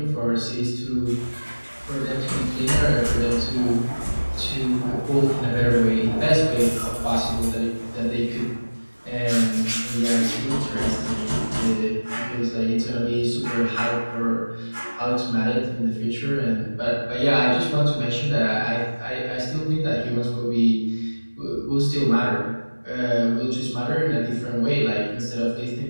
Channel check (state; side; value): inverted; both; correlation -1.00